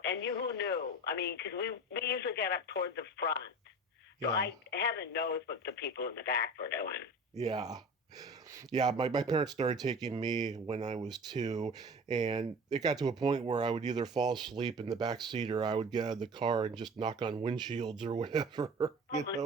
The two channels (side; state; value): both; normal; correlation 0.37